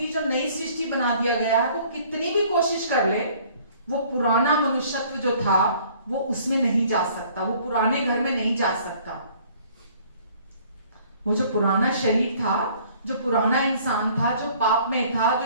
जो नई सृष्टि बना दिया गया है, वो कितनी भी कोशिश कर ले, वो पुराना मनुष्यत्व जो था वो उसमें नहीं जा सकता, वो पुराने घर में नहीं जा सकता। वो जो पुराना शरीर था, जो पुराना इंसान था, जो पाप में था,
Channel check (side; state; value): both; inverted; correlation -0.56